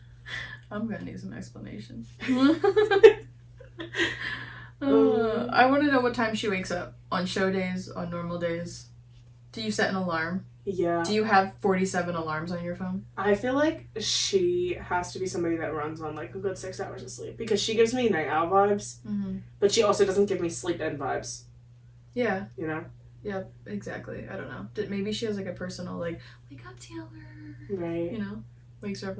I'm gonna need some explanation. I want to know what time she wakes up. On show days, on normal days. Do you set an alarm? Yeah. Do you have 47 alarms on your phone? I feel like she has to be somebody that runs on, like, a good 6 hours of sleep. Because she gives me night owl vibes, but she also doesn't give me sleep-in vibes. Yeah. You know? Yeah, exactly. I don't know. Maybe she has, like, a personal, like, wake up, Taylor. Right. You know? Wakes her up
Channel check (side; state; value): both; identical; correlation 1.00